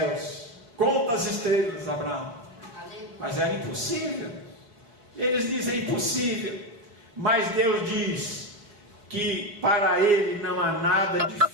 Conta as estrelas, Abraão. Mas era impossível. Eles dizem impossível. Mas Deus diz que para ele não há nada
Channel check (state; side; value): late; left; 5.1 ms